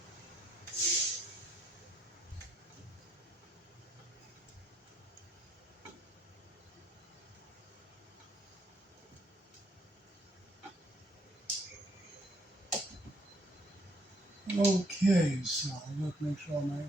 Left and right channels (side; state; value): both; normal; correlation 0.69